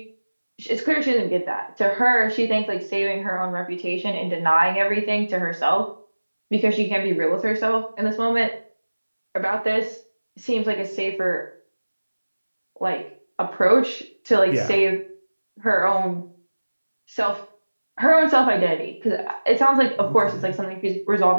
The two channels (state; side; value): inverted; both; correlation -1.00